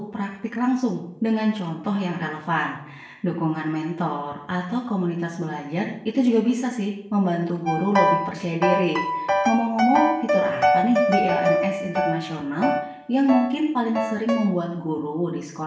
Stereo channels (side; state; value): both; identical; correlation 1.00